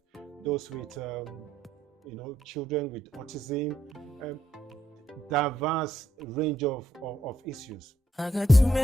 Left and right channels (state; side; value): normal; both; correlation 0.76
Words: those with children with autism, diverse range of issues. I got too